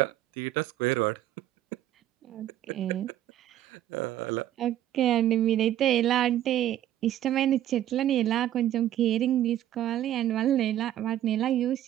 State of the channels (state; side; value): quieter; left; 12.2 dB